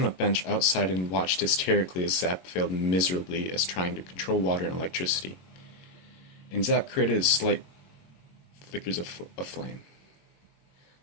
a bench outside and watched hysterically as Zap failed miserably as trying to control water and electricity. And Zap created slight flickers of flame.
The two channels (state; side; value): late; right; 22 ms